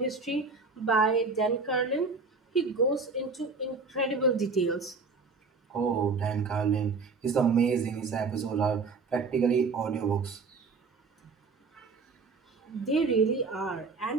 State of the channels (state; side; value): quieter; left; 4.4 dB